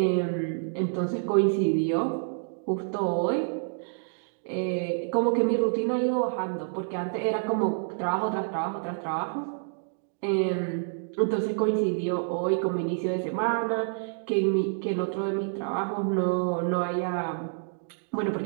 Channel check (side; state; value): left; silent; digital silence